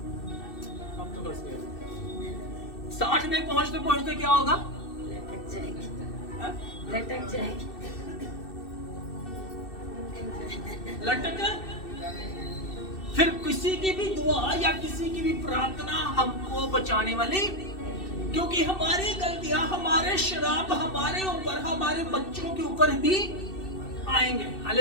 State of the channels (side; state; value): right; late; 2.6 ms